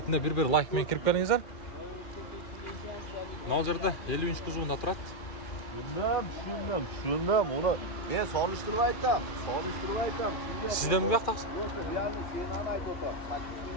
бир лайк менен кирип келиңиздер. Мына жерде 50 кузовунда турат. Şundan onu ben soluşturup aytam. Sizden mi yaptınız?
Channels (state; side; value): late; right; 2.4 ms